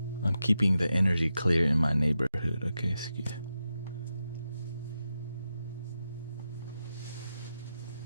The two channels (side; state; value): both; inverted; correlation -0.88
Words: keeping the energy clear in my neighborhood. Okay, excuse.